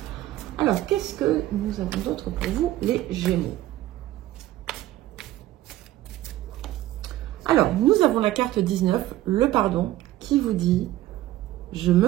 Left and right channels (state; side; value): quieter; left; 14.9 dB